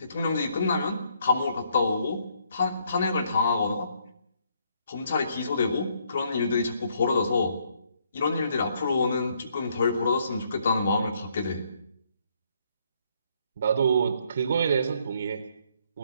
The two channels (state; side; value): inverted; both; correlation -0.70